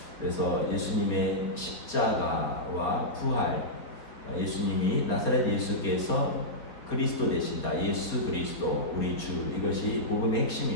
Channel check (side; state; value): right; late; 4.2 ms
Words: 그래서 예수님의 십자가와 부활, 예수님이 나사렛 예수께서 그리스도 되신다. 예수 그리스도 우리 주, 이것이 복음의